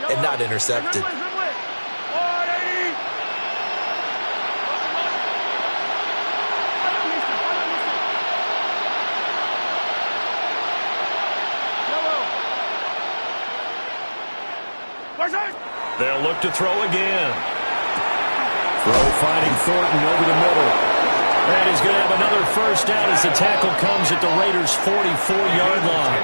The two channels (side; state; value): both; inverted; correlation -1.00